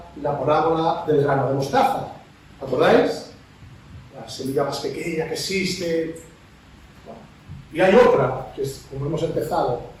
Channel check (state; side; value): identical; both; correlation 1.00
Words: la parábola del grano de mostaza. ¿Acordáis? La semilla más pequeña que existe. Bueno, y hay otra, que es como hemos empezado,